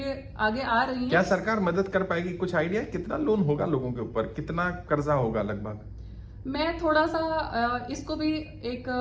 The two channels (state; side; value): identical; both; correlation 1.00